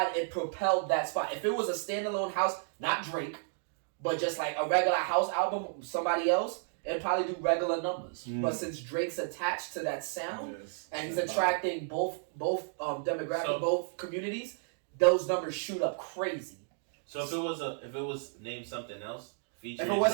it propelled that spot. If it was a standalone house, not Drake, but just like a regular house album, somebody else, it'd probably do regular numbers. But since Drake's attached to that sound and he's attracting both demographic, both communities, those numbers shoot up crazy. So if it was named something else, featuring if it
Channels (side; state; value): left; silent; digital silence